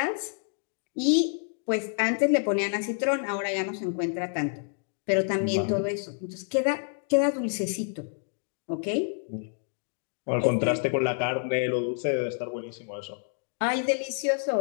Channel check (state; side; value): silent; right; 58 dB below the other